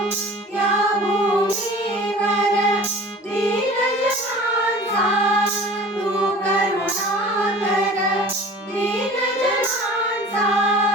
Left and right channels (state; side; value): normal; both; correlation 0.43